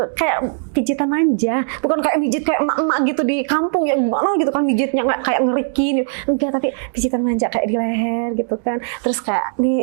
kayak pijitan manja, bukan kayak pijit kayak emak-emak gitu di kampung ya gimana gitu kan pijitnya nggak kayak ngerikin, enggak, tapi pijitan manja kayak di leher gitu kan, terus kayak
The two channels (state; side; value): silent; left; digital silence